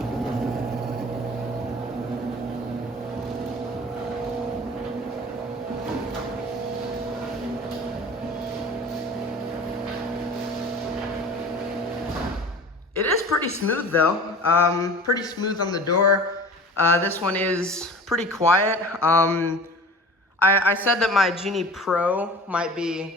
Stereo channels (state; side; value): normal; both; correlation 0.41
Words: It is pretty smooth though, pretty smooth on the door. This one is pretty quiet. I said that my Genie Pro might